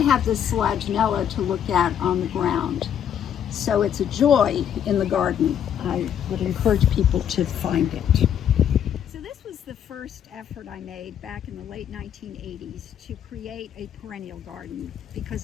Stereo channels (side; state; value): right; quieter; 9.3 dB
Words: have this Selaginella to look at on the ground. So it's a joy in the garden. I would encourage people to find it. So this was the first effort I made back in the late 1980s to create a perennial garden, because